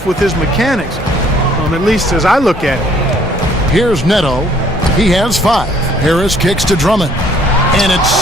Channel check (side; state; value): both; normal; correlation 0.61